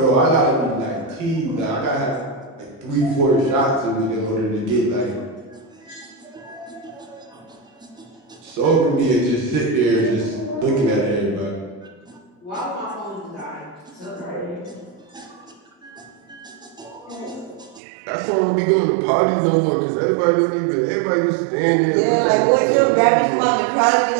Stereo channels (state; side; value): drops out; left; at 17.8 s